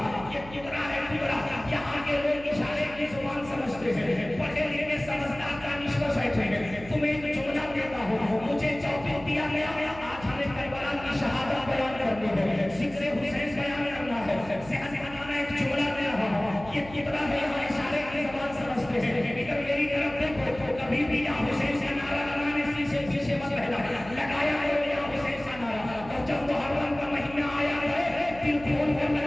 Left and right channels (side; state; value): right; noise; hum, 16 dB below the sound